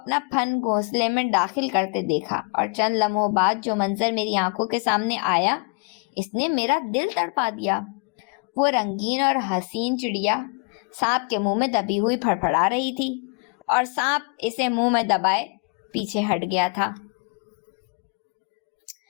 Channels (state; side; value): quieter; right; 35.4 dB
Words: پھن گھونسلے میں داخل کرتے دیکھا، اور چند لمحوں بعد جو منظر میری آنکھوں کے سامنے آیا اس نے میرا دل تڑپا دیا۔ وہ رنگین اور حسین چڑیا سانپ کے منہ میں دبی ہوئی پھڑپڑا رہی تھی، اور سانپ اسے منہ میں دبائے پیچھے ہٹ گیا تھا۔